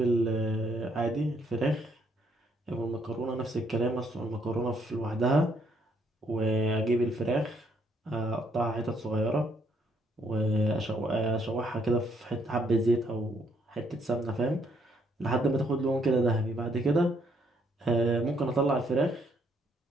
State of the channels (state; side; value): normal; both; correlation 0.70